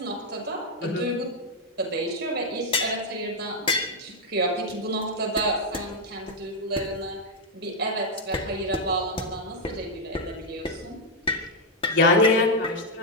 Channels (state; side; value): normal; both; correlation -0.01